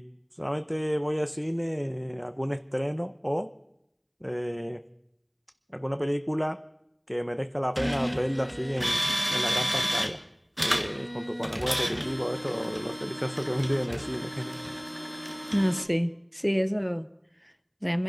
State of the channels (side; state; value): both; identical; correlation 1.00